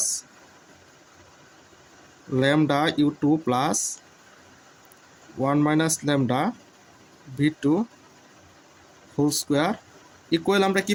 lambda you two plus 1 minus lambda B two whole square equal আমরা কি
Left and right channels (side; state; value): both; identical; correlation 1.00